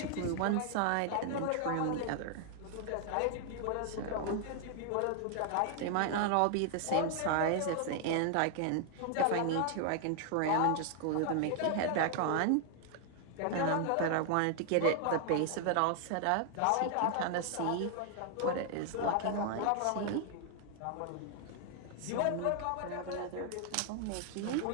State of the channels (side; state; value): both; different; correlation 0.00